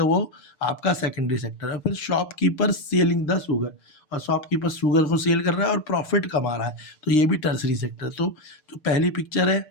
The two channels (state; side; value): late; right; 6.7 ms